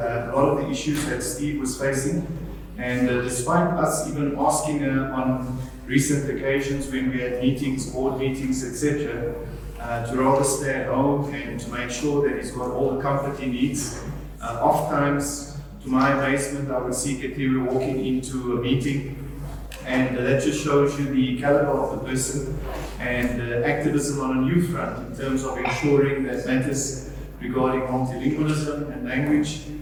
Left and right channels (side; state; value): both; identical; correlation 1.00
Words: lot of the issues that Steve was facing. And despite us even asking her on recent occasions when we had meetings, board meetings, etc., to rather stay at home and to make sure that he's got all the comfort he needs. Oftentimes, to my amazement, I would see Katiwe walking into a meeting, and that just shows you the caliber of the person and activism on a new front in terms of ensuring that matters regarding multilingualism and language